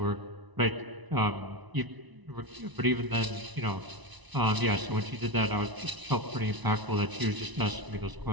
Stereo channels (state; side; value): late; left; 1.0 ms